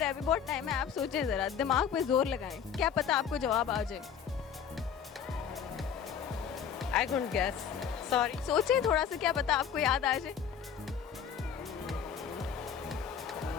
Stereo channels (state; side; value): quieter; right; 7.8 dB